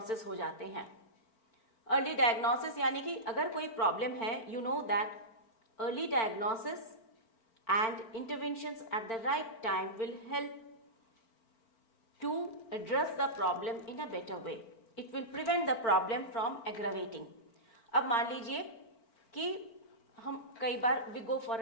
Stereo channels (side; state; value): right; late; 4.4 ms